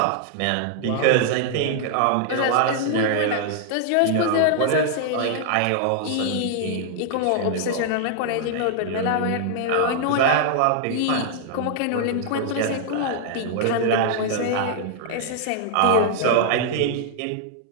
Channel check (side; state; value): both; different; correlation -0.01